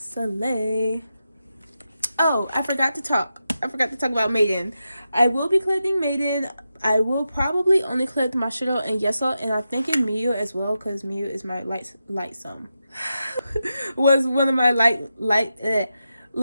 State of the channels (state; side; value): inverted; both; correlation -0.88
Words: Oh, I forgot to talk about Maiden. I will be collecting Maiden. I will probably only collect Mashiro and Yeseo, and I'm thinking Miyu as well, because Miyu is my light sum. Was one of my